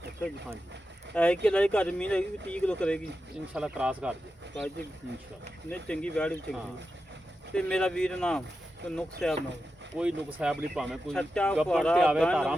ਅੱਛਾ ਜੀ ਹਾਂਜੀ ਇਹ ਕਿੱਲਾ ਦੇ ਕੱਚ ਮੀਂਹ ਲੱਗੀ 30 ਕਿਲੋ ਕਰੇਗੀ ਇਨਸ਼ਾਅੱਲਾ ਕ੍ਰਾਸ ਕਰ ਜੇ ਕੱਚ ਇਨਸ਼ਾਅੱਲਾ ਨੇ ਚੰਗੀ ਵਿਆਹ ਵੀ ਹਾਂ। ਚੰਗੀ ਤੇ ਮੇਰਾ ਵੀਰ ਨਾਮ ਕੋਈ ਨੁਕਸ ਸਾਹਿਬ ਨਾ ਹੋਵੇ। ਕੋਈ ਨੁਕਸ ਸਾਹਿਬ ਨਹੀਂ ਭਾਵੇਂ ਕੋਈ ਸੱਚਾ ਗੱਪਣ ਫੁਆਰਾ, ਤੇ ਆਵੇ ਗਾਂ ਧਾਰਾਂ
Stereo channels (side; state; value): both; normal; correlation 0.90